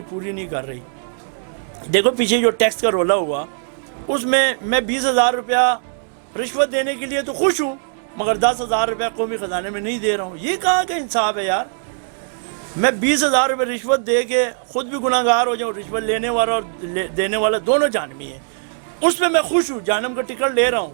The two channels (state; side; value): silent; left; 66 dB below the other